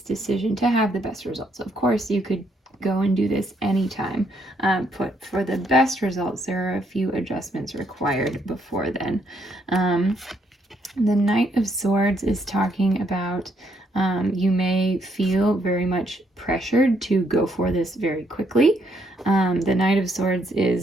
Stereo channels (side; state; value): both; normal; correlation 0.73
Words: to have the best results. Of course, you could go and do this anytime, but for the best results, there are a few adjustments required before then. The Knight of Swords is talking about you may feel very much pressured to go for this very quickly. The Knight of Swords